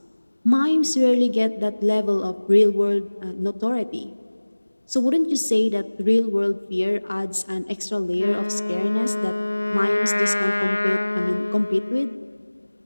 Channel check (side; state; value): both; inverted; correlation -1.00